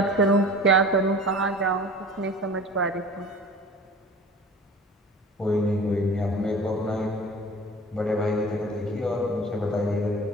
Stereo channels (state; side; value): normal; both; correlation 0.41